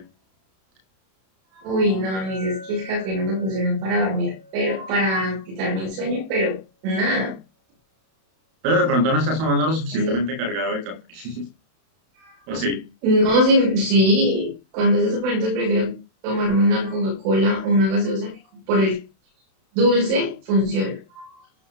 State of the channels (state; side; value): late; left; 32 ms